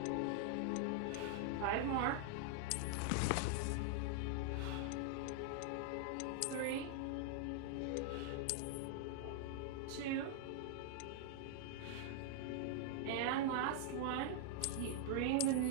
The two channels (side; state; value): both; different; correlation 0.00